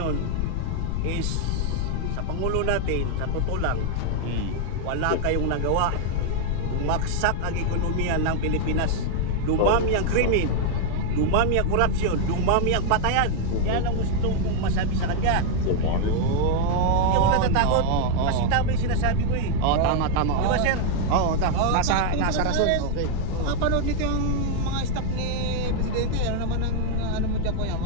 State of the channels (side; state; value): both; different; correlation 0.00